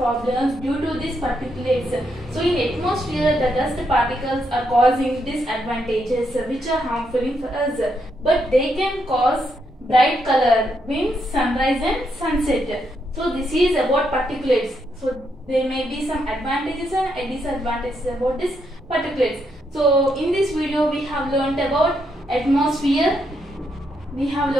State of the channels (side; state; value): both; normal; correlation 0.79